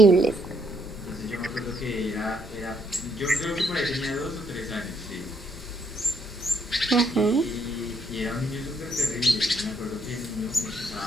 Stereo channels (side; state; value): both; normal; correlation 0.72